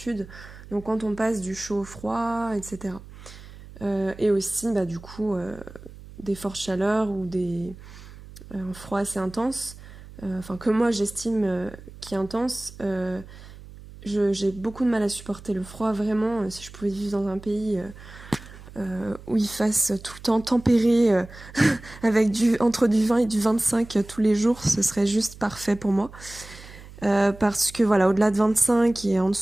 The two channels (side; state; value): right; noise; hum, 17 dB below the sound